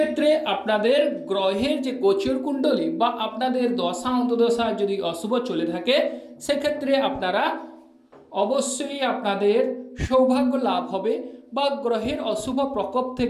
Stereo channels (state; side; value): identical; both; correlation 1.00